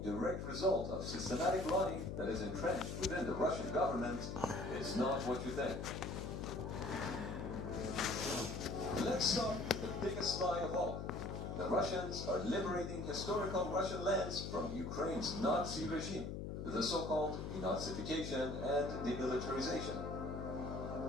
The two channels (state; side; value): noise; left; hum, 5 dB below the sound